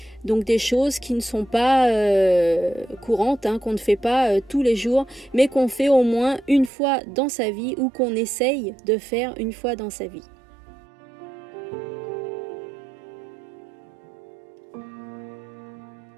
Donc des choses qui ne sont pas courantes, hein, qu'on ne fait pas tous les jours, mais qu'on fait au moins une fois dans sa vie ou qu'on essaye de faire une fois dans sa vie.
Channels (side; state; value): left; drops out; at 6.7 s